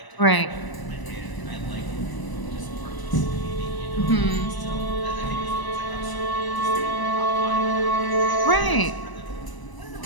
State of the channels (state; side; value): late; right; 1.0 ms